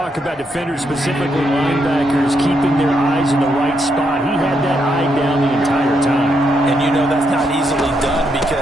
about defenders, specifically linebackers, keeping their eyes in the right spot, he had that eye down the entire time. And you know that's not easily done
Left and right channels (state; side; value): normal; both; correlation 0.79